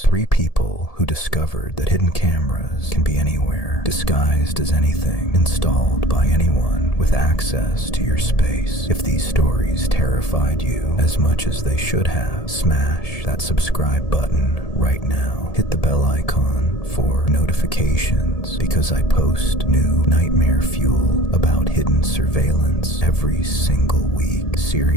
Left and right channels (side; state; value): right; late; 1.7 ms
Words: 3 people who discovered that hidden cameras can be anywhere, disguised as anything, installed by anyone with access to your space. If these stories terrified you as much as they should have, smash that subscribe button right now. Hit the bell icon for notifications, because I post new nightmare fuel about hidden surveillance every single week.